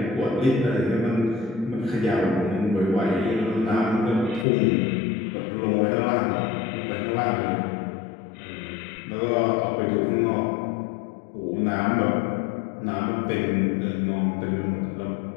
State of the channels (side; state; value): right; drops out; at 4.5 s